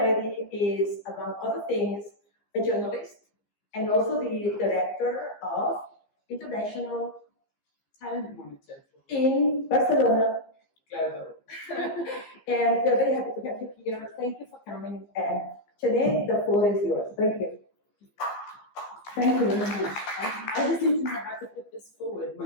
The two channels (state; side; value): late; right; 15 ms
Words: is, among other things, a journalist and also the director of International Talent Monitor in Barcelona. Global. And we're very happy to have you here. Thank you for coming. And Chené, the floor is yours. Thank you. Thank you very much. I just need to know how to put this forward,